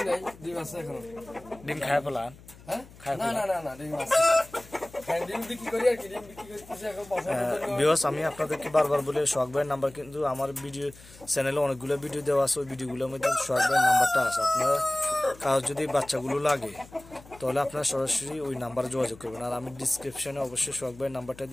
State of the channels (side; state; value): left; noise; hum, 21 dB below the sound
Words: ডিম খায় ফেলান? আমি আপনাদেরকে বারবার বলে সোহাগ ভাইয়ের নাম্বার, কিন্তু আমার ভিডিও চ্যানেলে অনেকগুলো ভিডিও দেওয়া আছে, ওই ভিডিওগুলোর মধ্যে সোহাগ ভাইয়ের নাম্বারটা আছে। আপনারা কারো যদি বাচ্চাগুলো লাগে তাহলে আপনারা সরাসরি ওই নাম্বারে যোগাযোগ করবেন, আর আমি ডিসক্রিপশনে অবশ্যই সোহাগ ভাইয়ের নাম্বারটা